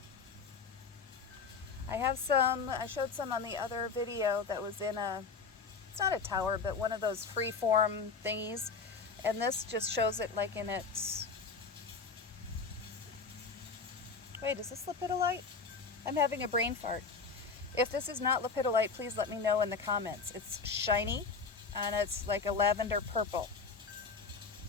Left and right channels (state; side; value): quieter; right; 4.9 dB